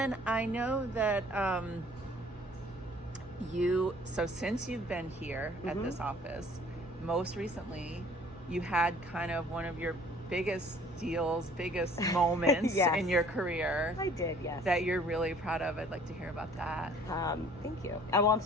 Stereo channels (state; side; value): normal; both; correlation 0.54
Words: I know that since you've been here at this office, most recently you had kind of one of your biggest deals, biggest moments in your career. I did, yes. That you're really proud of. I'd like to hear about that. Thank you. Well, I'm